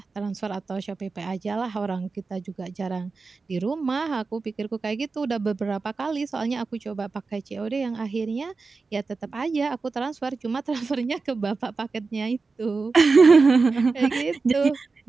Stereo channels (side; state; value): left; quieter; 4.2 dB